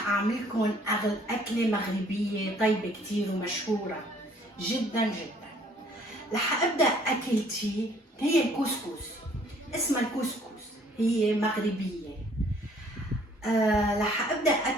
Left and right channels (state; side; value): normal; both; correlation 0.59